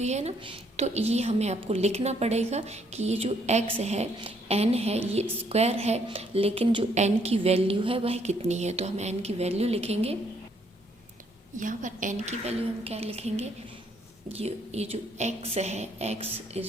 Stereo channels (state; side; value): normal; both; correlation 0.69